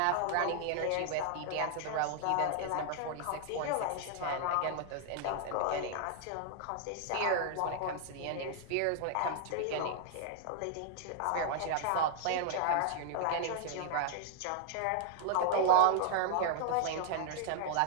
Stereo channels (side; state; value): both; different; correlation 0.00